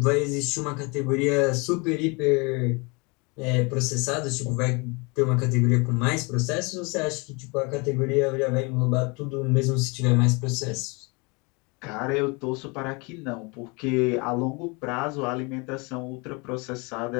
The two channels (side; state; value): right; quieter; 29.3 dB